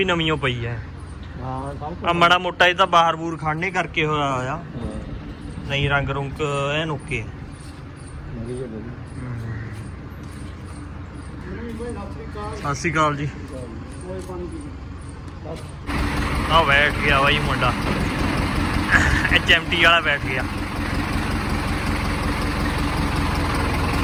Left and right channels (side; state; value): both; identical; correlation 1.00